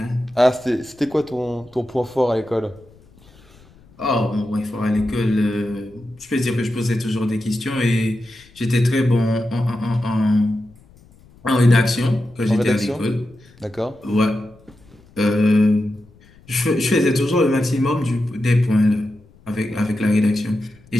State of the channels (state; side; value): noise; left; rumble, 27 dB below the sound